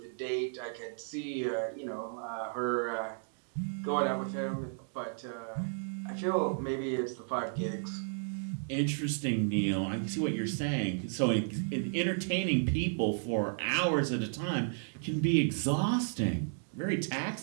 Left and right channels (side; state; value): left; silent; digital silence